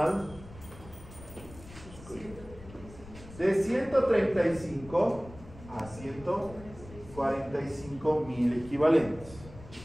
de 135 a 145 mil equivalentes.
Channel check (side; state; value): left; noise; rumble, 17 dB below the sound